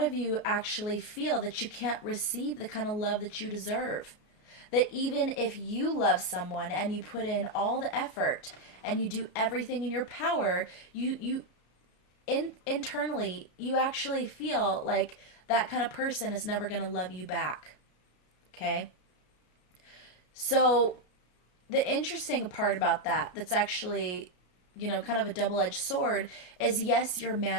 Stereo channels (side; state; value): right; late; 33 ms